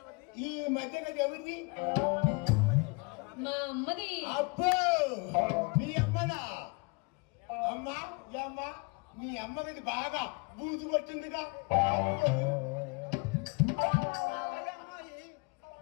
ఈ మధ్య గది ఎవరిది? మా అమ్మది. అబ్బో మీ అమ్మనా? అమ్మా ఈ అమ్మ మీ అమ్మ గది బాగా బూజు పట్టిందిగా.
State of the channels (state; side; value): quieter; right; 30.3 dB